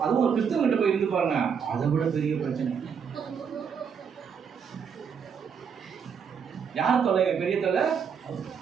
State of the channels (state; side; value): quieter; left; 6.8 dB